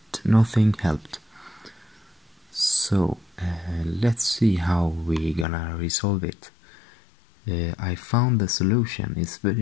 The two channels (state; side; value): drops out; right; at 5.5 s